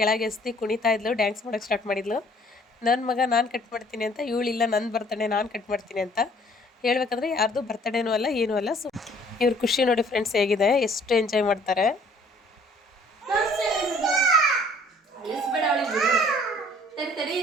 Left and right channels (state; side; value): normal; both; correlation 0.57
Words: ಎಸ್ತಿ ಕುಣಿತಾ ಇದ್ಲು, ಡ್ಯಾನ್ಸ್ ಮಾಡೋಕ್ಕೆ ಸ್ಟಾರ್ಟ್ ಮಾಡಿದ್ಲು. ನನ್ನ ಮಗ ನಾನು ಕಟ್ ಮಾಡ್ತೀನಿ ಅಂತ, ಇವಳಿಲ್ಲ ನನ್ನ ಬರ್ತಡೇ ನಾನು ಕಟ್ ಮಾಡ್ತೀನಿ ಅಂತ. ಹೇಳ್ಬೇಕಂದ್ರೆ ಯಾರ್ದು ಬರ್ತಡೇನೂ ಅಲ್ಲ ಏನೂ ಅಲ್ಲ. ಸೊ ಇವ್ರ ಖುಷಿ ನೋಡಿ ಫ್ರೆಂಡ್ಸ್ ಹೇಗಿದೆ, ಎಷ್ಟು ಎಂಜಾಯ್ ಮಾಡ್ತಾರೆ.